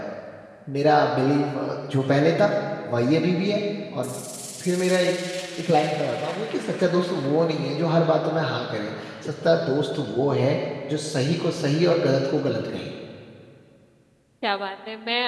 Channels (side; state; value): both; identical; correlation 1.00